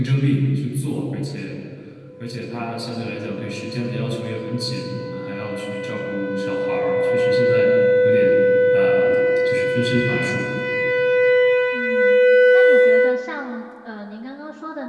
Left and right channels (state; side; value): identical; both; correlation 1.00